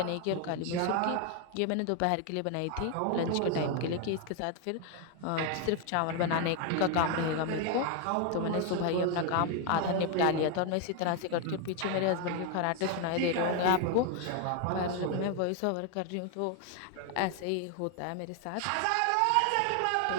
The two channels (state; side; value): different; both; correlation 0.01